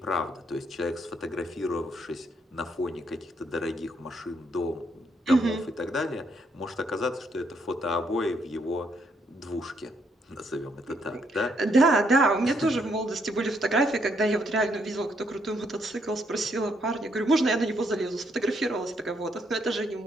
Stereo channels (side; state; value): both; normal; correlation 0.73